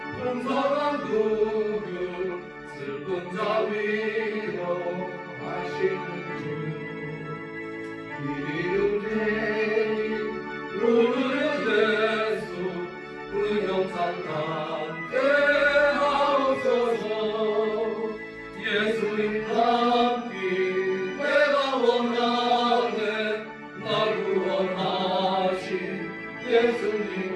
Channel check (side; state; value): both; identical; correlation 1.00